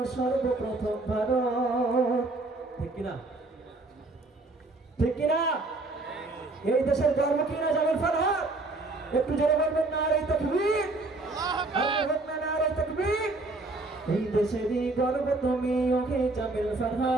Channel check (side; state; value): left; quieter; 3.1 dB